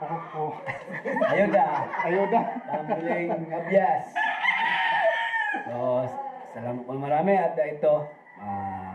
Ayuda. Ayuda. Pambiling abyas. So, salamat po marami at ito,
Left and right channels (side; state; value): both; identical; correlation 1.00